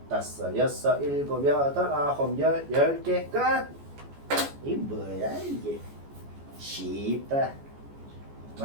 다섯, 여섯, 일곱, 여덟, 아홉, 열, 10개 끝. 이 뭐야 이게? 쉽다.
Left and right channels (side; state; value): left; late; 14 ms